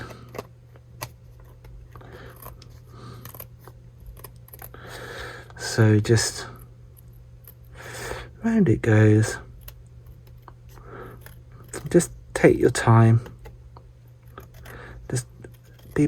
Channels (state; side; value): identical; both; correlation 1.00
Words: So just round it goes. Just take your time. Just be